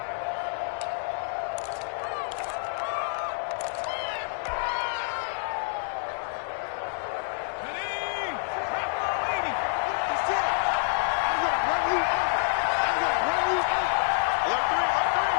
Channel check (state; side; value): silent; right; digital silence